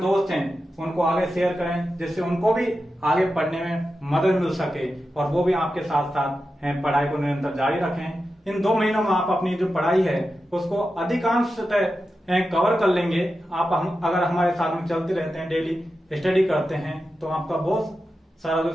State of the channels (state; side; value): normal; both; correlation 0.91